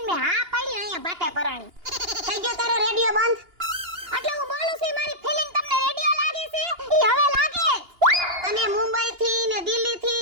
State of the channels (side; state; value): left; late; 2.8 ms